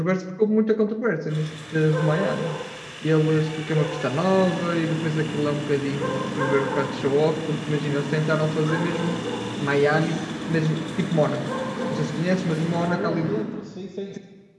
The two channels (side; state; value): both; identical; correlation 1.00